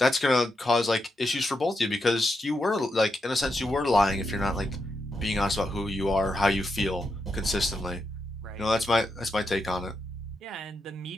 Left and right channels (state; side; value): normal; both; correlation 0.84